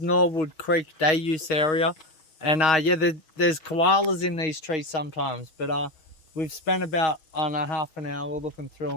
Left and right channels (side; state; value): right; late; 6.3 ms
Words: Creek day use area, and yeah, there's koalas in these trees sometimes, but we've spent about half an hour looking through